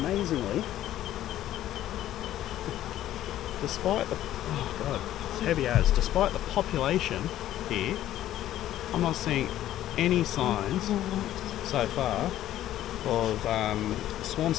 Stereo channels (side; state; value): right; quieter; 12.9 dB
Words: despite the it's heavy as, despite the population here, I'm not seeing any signs so far of swarm